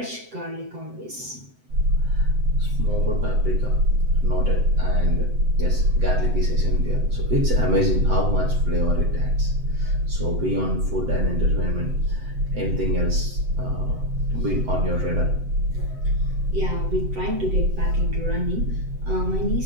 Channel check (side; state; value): left; late; 7.8 ms